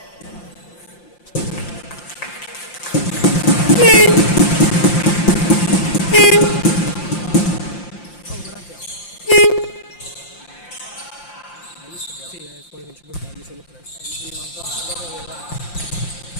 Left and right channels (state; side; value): late; right; 5.7 ms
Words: Sì, è fuori con 5 palli, solo 3.